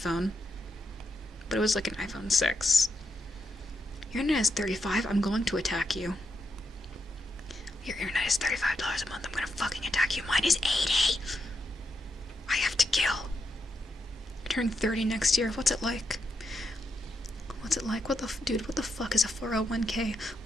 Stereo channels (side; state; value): both; normal; correlation 0.83